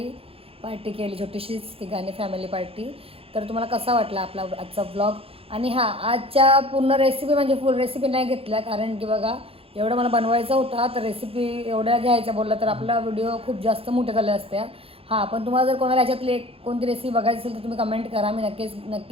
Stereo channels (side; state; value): left; late; 0.27 ms